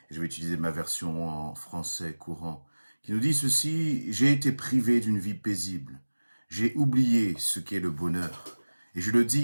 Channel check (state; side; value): inverted; both; correlation -1.00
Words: Je vais utiliser ma version en français courant qui nous dit ceci: j'ai été privé d'une vie paisible. J'ai oublié ce qu'est le bonheur. Et je le